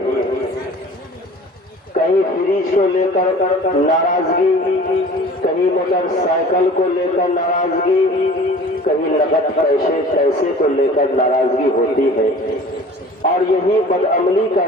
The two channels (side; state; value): both; normal; correlation 0.44